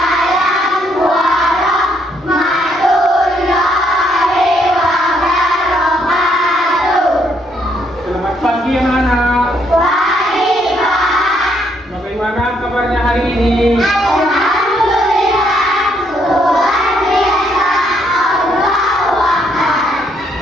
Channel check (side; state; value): both; normal; correlation 0.71